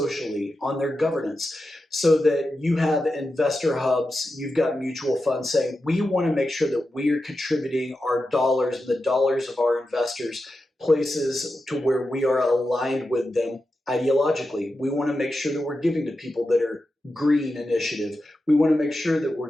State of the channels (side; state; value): both; normal; correlation 0.90